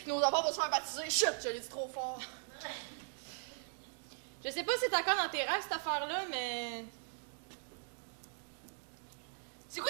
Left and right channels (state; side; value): silent; left; digital silence